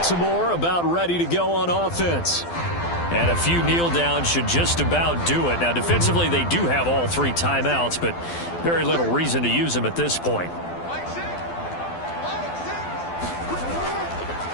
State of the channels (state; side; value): late; right; 12 ms